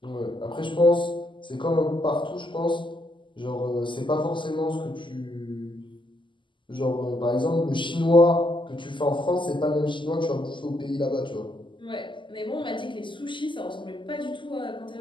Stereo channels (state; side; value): late; right; 0.24 ms